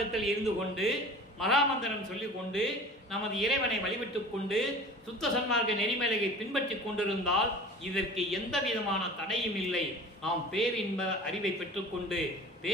இருந்து கொண்டு மகாமந்திரம் சொல்லிக் கொண்டு நமது இறைவனை வழிபட்டுக் கொண்டு சுத்த சன்மார்க்க நெறிமலையை பின்பற்றி கொண்டிருந்தால் இதற்கு எந்த விதமான தடையும் இல்லை. நாம் பேரின்ப அறிவை பெற்றுக்கொண்டு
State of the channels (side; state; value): both; normal; correlation 0.41